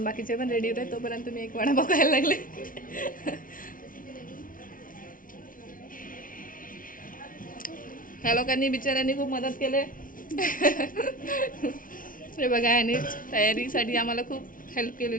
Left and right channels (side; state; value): right; late; 0.39 ms